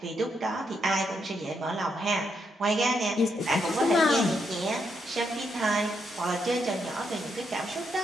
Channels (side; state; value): both; normal; correlation 0.79